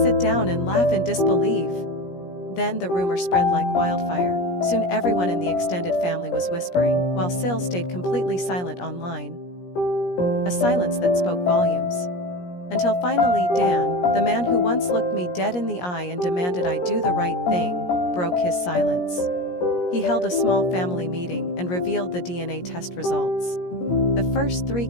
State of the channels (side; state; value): right; late; 17 ms